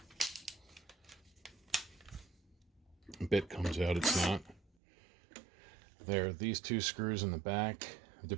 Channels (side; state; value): left; drops out; at 4.6 s